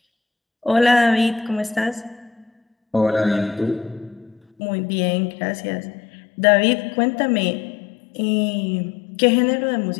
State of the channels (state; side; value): drops out; right; at 4.4 s